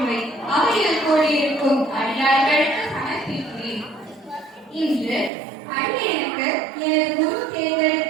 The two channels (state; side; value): drops out; left; at 5.3 s